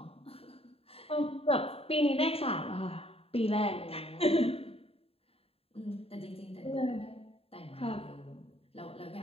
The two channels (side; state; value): right; late; 0.28 ms